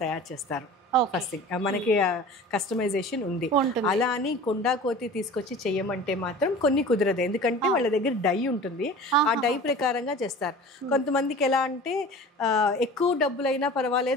తయారు చేస్తారు. ఫస్ట్ థింగ్ మనకి కస్టమైజేషన్ ఉంది. అలా అని కొండా కోతి తీసుకొచ్చి చెయ్యమంటే మాత్రం కొన్ని కుదరదు, ఎందుకంటే వాళ్ళ దగ్గర డై ఉంటుంది. ఆ డై ప్రకారంగా చేస్తారు. కొంతమందికి ఎలా అంటే ఎక్కువ డబ్బులైనా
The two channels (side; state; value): both; normal; correlation 0.39